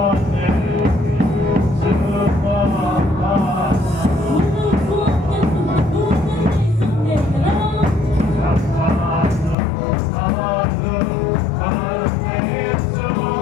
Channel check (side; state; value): right; drops out; at 9.6 s